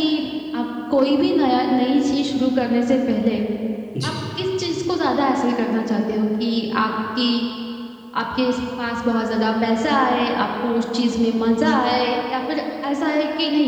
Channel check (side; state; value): both; identical; correlation 1.00